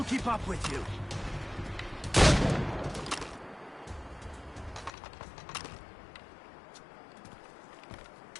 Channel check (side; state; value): right; drops out; at 4.9 s